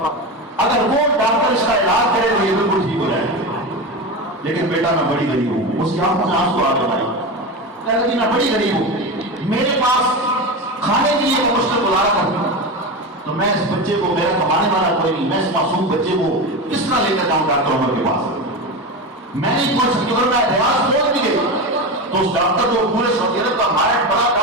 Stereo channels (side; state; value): both; normal; correlation 0.22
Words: اگر وہ ڈاکٹر اس کا علاج کرے تو یہ بالکل ٹھیک ہو جائے گا۔ لیکن بیٹا میں بڑی غریب ہوں، اس کی آنکھوں سے آنسو آ گئے بھائی، کہتا جی میں بڑی غریب ہوں، میرے پاس کھانے کے لیے میں مشکل گزارا کرتا ہوں، تو میں اس بچے کو، میرا کمانے والا کوئی نہیں، میں اس معصوم بچے کو کس طرح لے کر جاؤں ڈاکٹر عمر کے پاس؟ میں نہیں پہنچ سکتی، اگر میں ریاض پہنچ بھی گئی تو اس ڈاکٹر جو پورے سعودی عرب کا ماہر بڑا